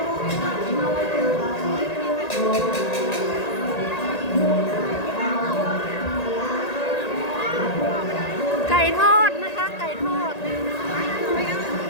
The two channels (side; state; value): right; late; 1.8 ms